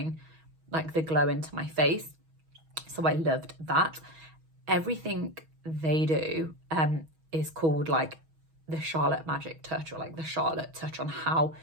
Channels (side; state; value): left; late; 6.2 ms